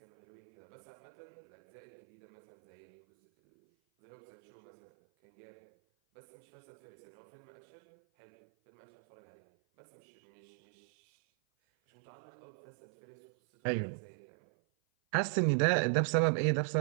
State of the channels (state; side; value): silent; left; 52 dB below the other